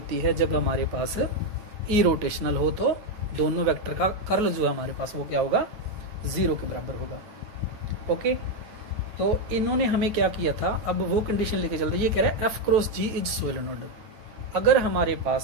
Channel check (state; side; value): late; left; 9.4 ms